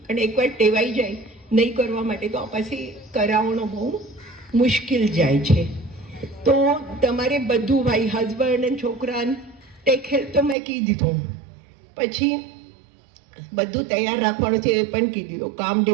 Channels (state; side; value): drops out; left; at 10.6 s